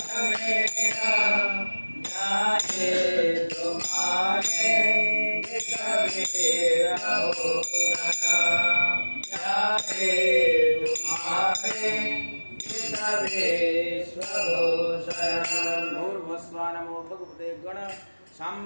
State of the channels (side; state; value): both; inverted; correlation -1.00